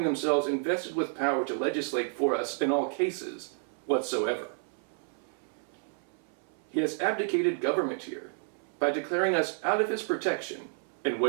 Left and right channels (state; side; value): silent; left; 57 dB below the other